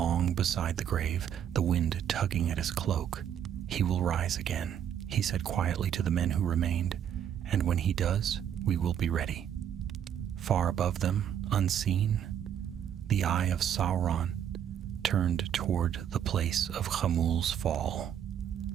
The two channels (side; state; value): left; quieter; 9.4 dB